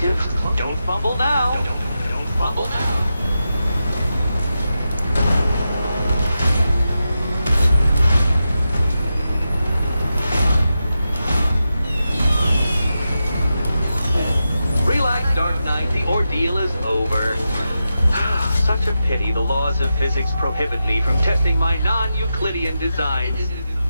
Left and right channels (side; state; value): both; inverted; correlation -0.89